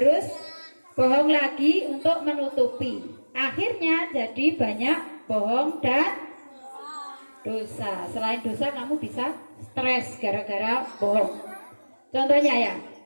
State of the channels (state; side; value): inverted; both; correlation -1.00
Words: bohong lagi untuk menutupi. Akhirnya jadi banyak bohong dan dosa. Selain dosa kamu bisa stres gara-gara bohong. Contohnya ya,